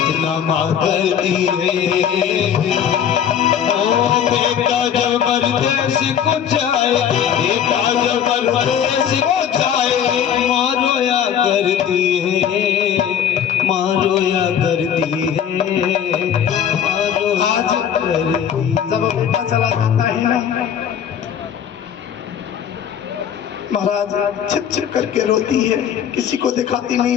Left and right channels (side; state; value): right; quieter; 8.8 dB